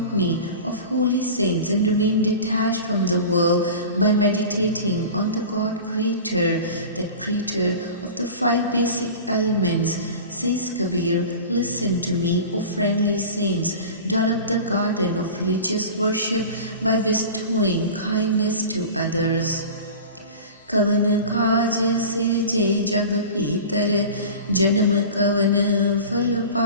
of holy saints and remain detached from the world by meditating on the God Creator, that Creator of the 5 basic elements. Says Kabir, listen to me, O friendly saints, develop the garden of religious worship by bestowing kindness to others. कवन काज सिरजे जग भीतर, जन्म कवन फल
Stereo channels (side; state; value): both; inverted; correlation -0.35